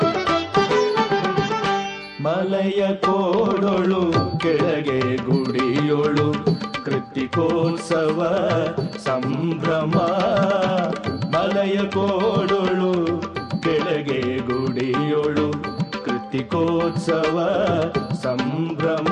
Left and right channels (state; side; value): identical; both; correlation 1.00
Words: ಮಲಯ ಕೋಡೊಳು ಕೆಳಗೆ ಗುಡಿಯೊಳು ಕೃತಿಕೋತ್ಸವ ಸಂಭ್ರಮ. ಮಲಯ ಕೋಡೊಳು ಕೆಳಗೆ ಗುಡಿಯೊಳು ಕೃತಿಕೋತ್ಸವ